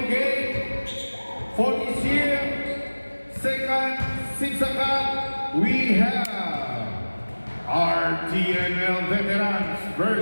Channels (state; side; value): inverted; both; correlation -1.00